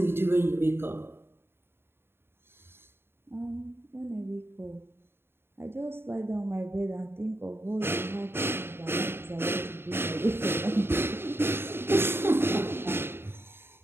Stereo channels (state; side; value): late; left; 0.11 ms